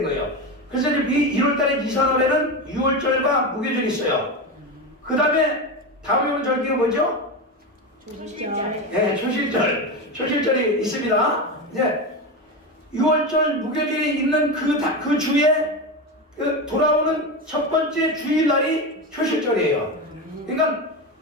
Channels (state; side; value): normal; both; correlation 0.18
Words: 거예요. 그래서 이제 1월달에 니산월에는 6월절과 무교절이 있어요. 그 다음에 다음에 온 절기가 뭐죠? 네, 초실절이 있습니다. 이제 6월절 무교절이 있는 그 주에 돌아오는 첫 번째 주일날이 초실절이에요. 그러니까